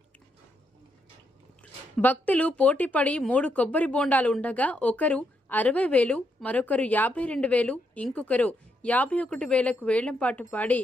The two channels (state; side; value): normal; both; correlation 0.79